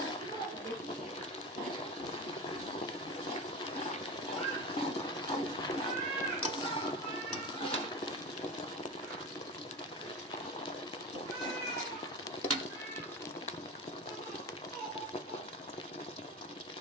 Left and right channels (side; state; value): both; normal; correlation 0.26